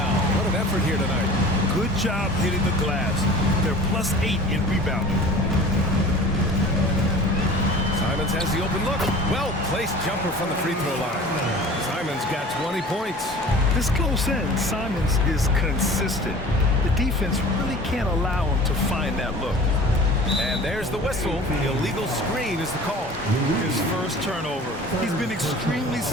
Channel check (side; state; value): both; normal; correlation 0.42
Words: What an effort here tonight. Good job hitting the glass. They're +8 in rebounding. Simons has the open look. Well-placed jumper from the free throw line. Simons got 20 points. This close in, Simons is consistent. The defense really can't allow him to find that look. And there's the whistle. The illegal screen is the call. His first turnover. He's been extremely